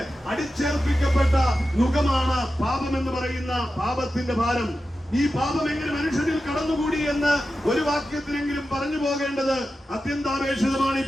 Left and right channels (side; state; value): both; normal; correlation 0.92